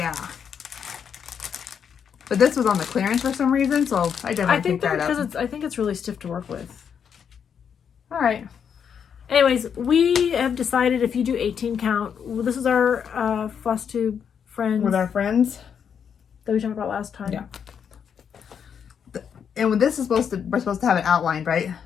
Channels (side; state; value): right; quieter; 7.5 dB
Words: But this was on the clearance for some reason, so I definitely picked that up. I think it's really stiff to work with. All right. Anyways, we have decided if you do 18 count, this is our FlossTube friends. With our friends. That we talked about last time. Yeah. And when this is we're supposed to have it outlined, right?